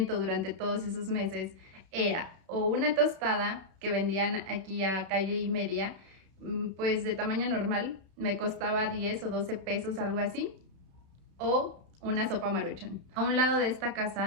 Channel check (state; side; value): late; left; 32 ms